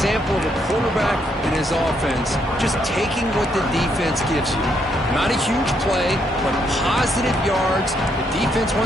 of a quarterback and his offense just taking what the defense gives you. Not a huge play, but positive yards. The defense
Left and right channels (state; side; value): normal; both; correlation 0.74